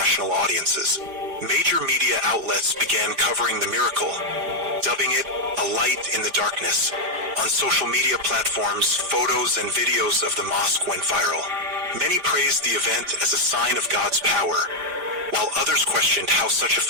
audiences. Major media outlets began covering the miracle, dubbing it a light in the darkness. On social media platforms, photos and videos of the mosque went viral. Many praised the event as a sign of God's power, while others questioned how such a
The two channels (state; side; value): late; left; 5.0 ms